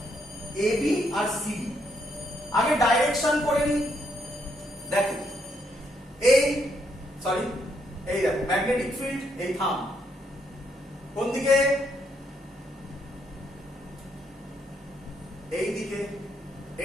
ab আর cd। আগে ডাইরেকশন করে নি। দেখো এই দেখো ম্যাগনেটিক ফিল্ড, এই থাম্ব কোন দিকে? এই দিকে।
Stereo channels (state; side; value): normal; both; correlation 0.75